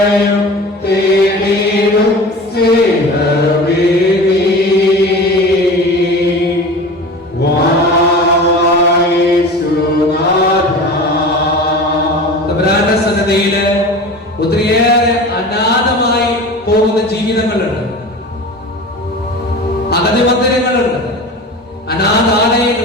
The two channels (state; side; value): normal; both; correlation 0.35